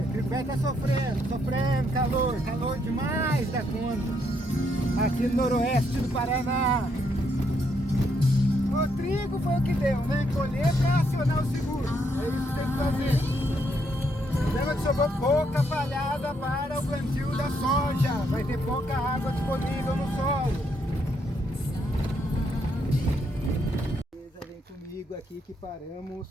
tá sofrendo calor demais da conta, aqui no noroeste do Paraná. O trigo foi o que deu, né? Colher para acionar o seguro, é isso que tem que fazer. Lembra que sobrou pouca palhada para o plantio da soja, vai ter pouca água disponível no solo. Vem comigo aqui que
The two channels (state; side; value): normal; both; correlation 0.75